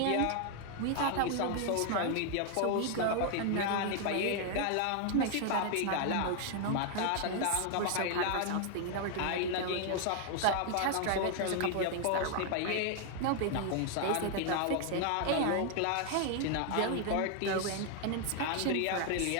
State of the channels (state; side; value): different; both; correlation 0.00